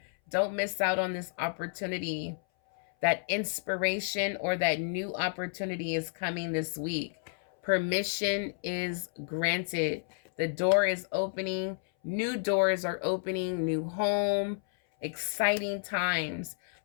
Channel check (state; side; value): silent; right; 57 dB below the other